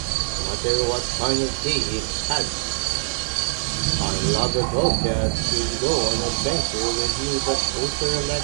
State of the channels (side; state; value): left; silent; 60 dB below the other